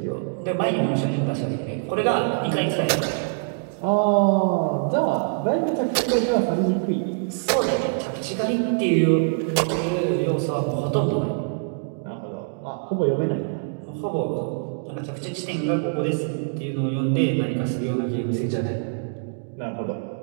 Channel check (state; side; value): silent; left; digital silence